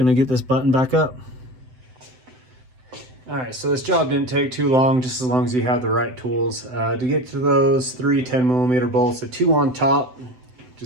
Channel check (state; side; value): late; left; 7.8 ms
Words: get this button back up. All right, so this job didn't take too long, just as long as you have the right tools. To get to those 3 10mm bolts, the 2 on top,